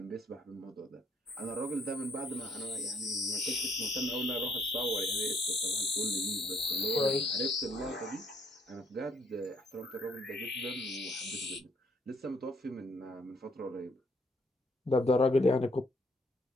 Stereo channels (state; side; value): normal; both; correlation 0.66